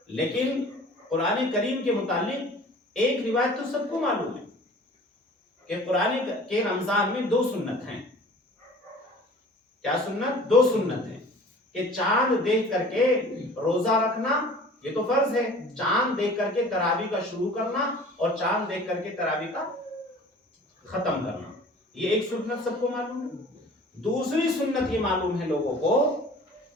لیکن قرآن کریم کے متعلق ایک روایت تو سب کو معلوم ہے کہ قرآن کے رمضان میں 2 سنت ہیں۔ کیا سنت؟ 2 سنت ہیں کہ چاند دیکھ کر کے روزہ رکھنا، یہ تو فرض ہے، چاند دیکھ کر کے تراویح کا شروع کرنا اور چاند دیکھ کر کے تراویح کا ختم کرنا، یہ ایک سنت سب کو معلوم ہے۔ دوسری سنت یہ معلوم ہے لوگوں کو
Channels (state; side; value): normal; both; correlation 0.46